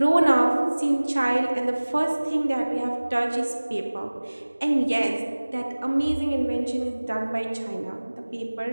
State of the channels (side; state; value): both; inverted; correlation -1.00